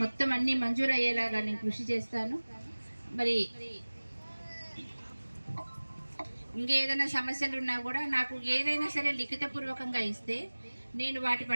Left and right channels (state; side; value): inverted; both; correlation -1.00